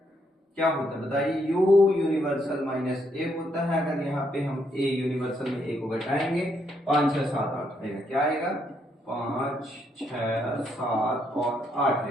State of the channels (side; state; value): both; normal; correlation 0.75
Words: क्या होता है बताइए, यू यूनिवर्सल माइनस ए होता है। अगर यहाँ पे हम ए यूनिवर्सल में ए को घटाएंगे 5 6 7 8 आएगा, क्या आएगा 5 6 7 और 8